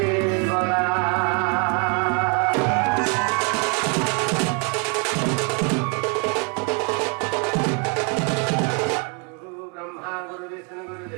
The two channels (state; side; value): quieter; left; 35.7 dB